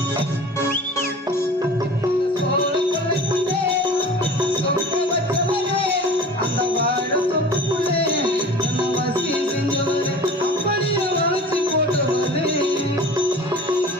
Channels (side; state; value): both; normal; correlation 0.41